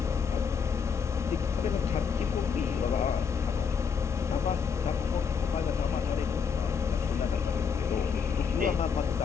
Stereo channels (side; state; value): right; quieter; 6.3 dB